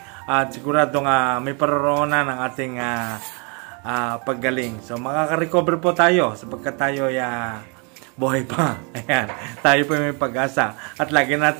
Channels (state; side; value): quieter; left; 34.3 dB